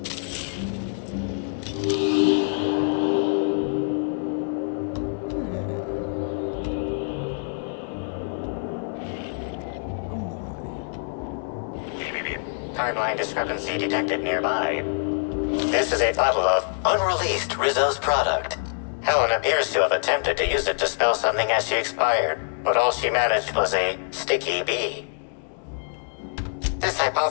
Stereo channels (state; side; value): silent; right; digital silence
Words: Timeline discrepancy detected nearby. This is a bottle of unreleased Rizzo's product. Helen appears to have attempted to use it to spell something as she expired, but all she managed was a sticky bee. This